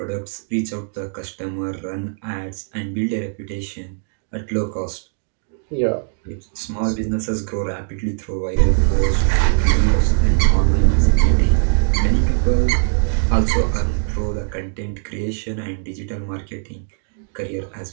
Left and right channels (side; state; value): left; silent; digital silence